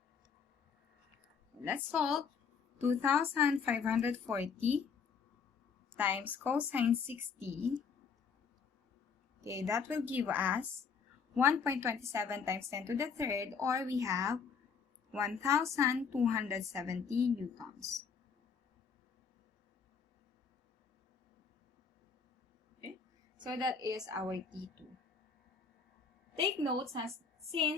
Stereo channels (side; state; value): right; quieter; 6.0 dB